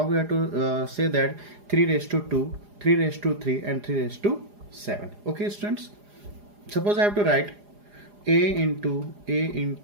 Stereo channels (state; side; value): late; left; 4.9 ms